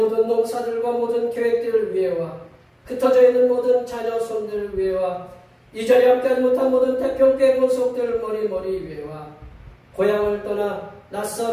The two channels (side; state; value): both; identical; correlation 1.00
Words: 농사들과 모든 계획들을 위해와 흩어져 있는 모든 자녀 손들 위에와 이 자리에 함께하지 못한 모든 태평교회 본속들 머리 위에와 고향을 떠나